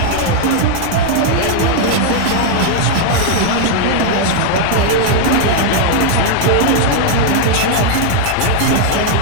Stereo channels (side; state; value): both; different; correlation 0.00